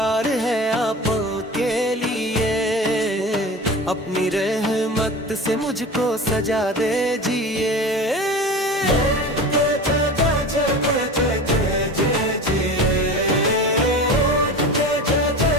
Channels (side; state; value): both; normal; correlation 0.33